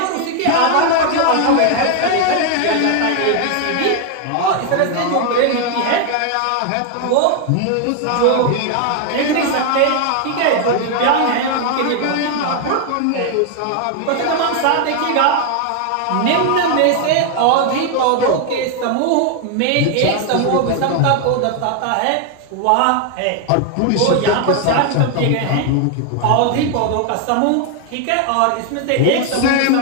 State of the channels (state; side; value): different; both; correlation 0.00